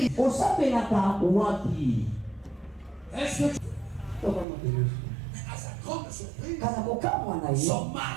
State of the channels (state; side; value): drops out; left; at 4.5 s